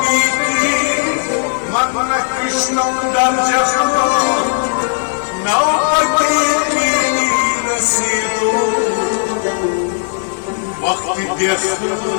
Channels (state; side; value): silent; right; digital silence